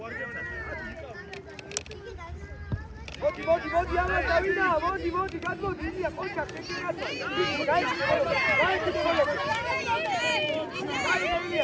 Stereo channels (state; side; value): identical; both; correlation 1.00